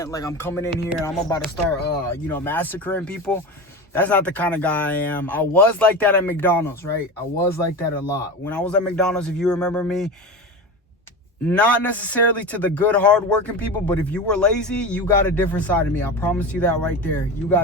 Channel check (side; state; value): both; normal; correlation 0.26